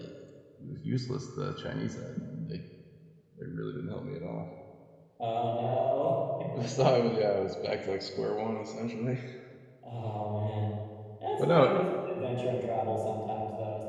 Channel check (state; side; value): identical; both; correlation 1.00